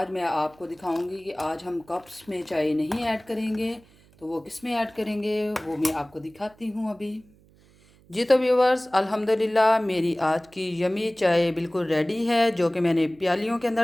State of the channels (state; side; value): noise; right; hum, 29 dB below the sound